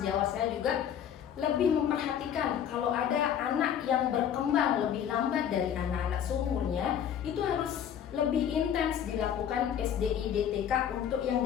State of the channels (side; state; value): right; quieter; 9.1 dB